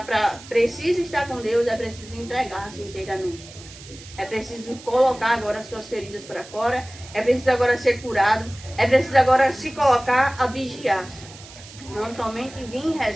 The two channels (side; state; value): right; noise; hiss, 18 dB below the sound